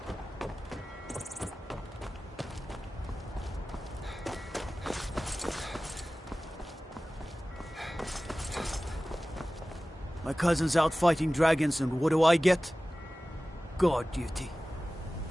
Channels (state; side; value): normal; both; correlation 0.97